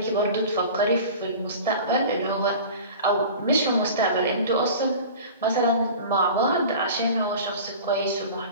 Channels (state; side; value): inverted; both; correlation -0.37